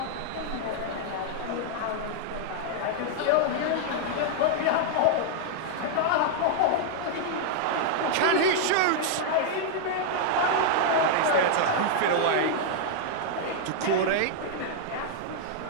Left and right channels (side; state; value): both; different; correlation -0.01